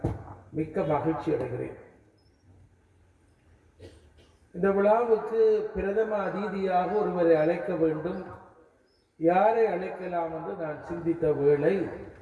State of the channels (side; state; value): both; identical; correlation 1.00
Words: மிக்க மகிழ்ச்சி அடைகிறேன். இந்த விழாவுக்கு பிரதம அதிதியாக ஒருவரை அழைக்க வேண்டும். யாரை அழைக்கலாம் என்று நான் சிந்தித்த வேளை,